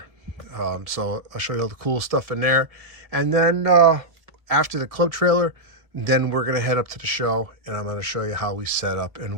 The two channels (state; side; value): late; left; 1.3 ms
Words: So I'll show you all the cool stuff in there, and then after the club trailer, then we're going to head up to the show, and I'm going to show you how we set up and